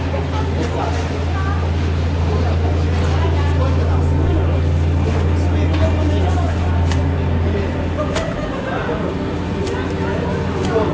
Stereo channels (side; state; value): both; identical; correlation 1.00